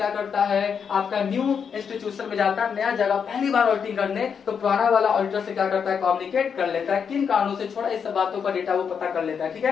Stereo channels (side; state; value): right; quieter; 6.8 dB